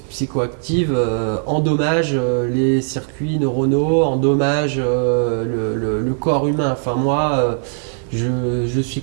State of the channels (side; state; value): left; silent; digital silence